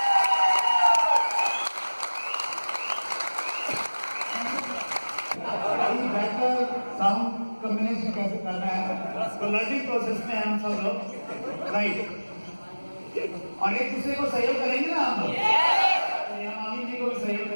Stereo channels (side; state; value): both; inverted; correlation -1.00